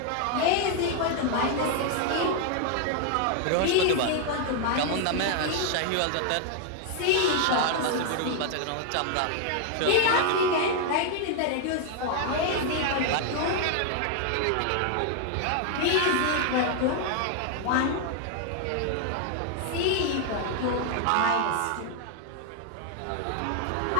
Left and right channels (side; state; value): both; different; correlation 0.00